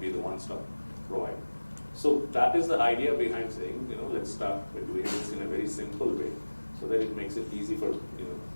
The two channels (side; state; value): both; inverted; correlation -1.00